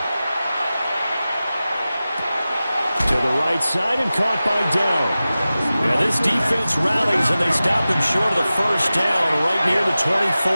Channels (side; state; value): both; inverted; correlation -0.95